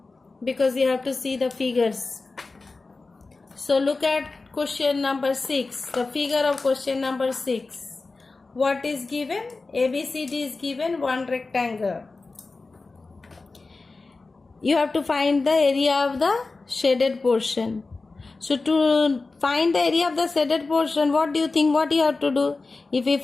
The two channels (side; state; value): right; quieter; 3.7 dB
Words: because you have to see the figures. So look at question number 6, the figure of question number 6. What is given? ABCD is given, one rectangle. You have to find the area of the shaded portion. So to find the area of the shaded portion, what do you think what you have to do? If we